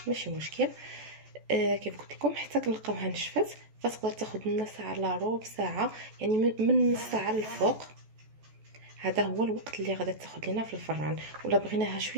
ماشي مشكل. كيف قلت لكم حتى كنلقاوها نشفت فتقدر تاخذ لنا ساعه الا ربع ساعه يعني من نص ساعه للفوق. هذا هو الوقت اللي غادي تاخذ لنا في الفران. ولا بغيناها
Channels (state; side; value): late; left; 14 ms